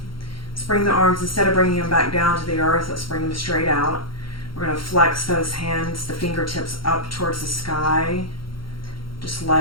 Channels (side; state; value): right; late; 0.73 ms